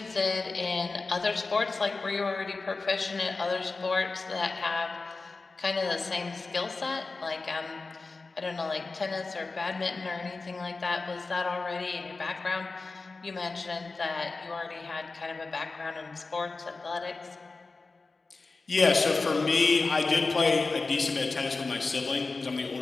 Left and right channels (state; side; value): quieter; right; 3.8 dB